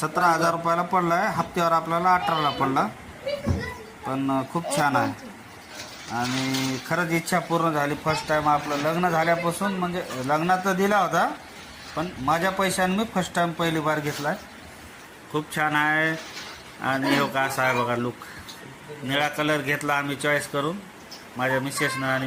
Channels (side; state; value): both; identical; correlation 1.00